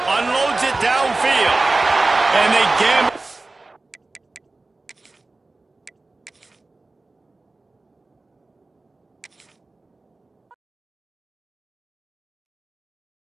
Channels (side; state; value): left; quieter; 3.2 dB